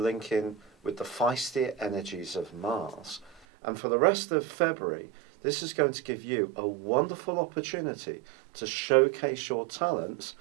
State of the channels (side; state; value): left; drops out; at 3.4 s